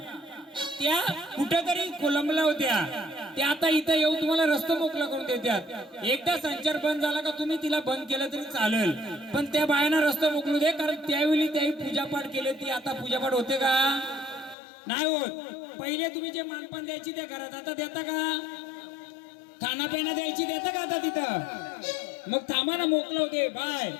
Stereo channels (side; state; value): right; drops out; at 14.6 s